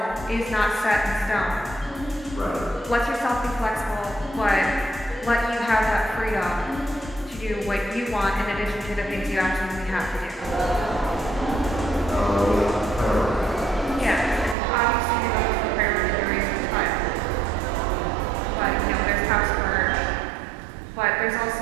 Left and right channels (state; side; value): drops out; left; at 14.6 s